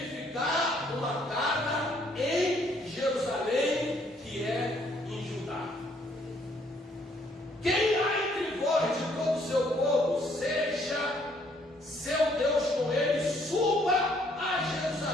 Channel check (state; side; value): normal; both; correlation 0.66